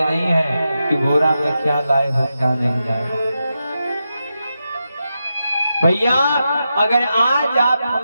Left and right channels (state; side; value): inverted; both; correlation -0.88